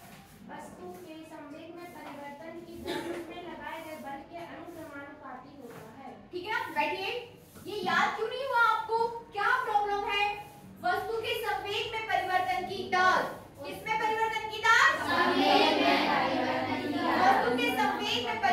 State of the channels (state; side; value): identical; both; correlation 1.00